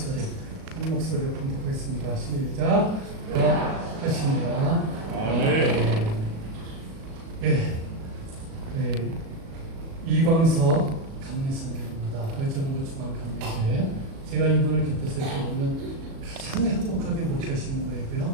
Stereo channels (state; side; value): late; left; 37 ms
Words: 한 목소리로 봉독하겠습니다. 시작. 하십니다. 아멘. 예. 네. 이광서 감리선교입니다. 의정부 중앙감리교회. 제가 이분을 곁에서 이렇게 보면 가장 행복하게 목회하시는